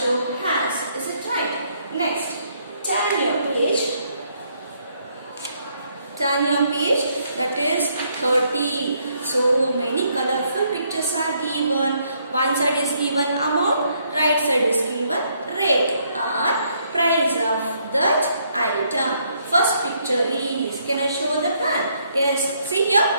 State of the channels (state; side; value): inverted; both; correlation -0.71